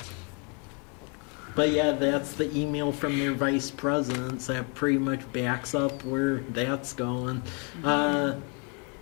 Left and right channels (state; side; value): quieter; right; 35.8 dB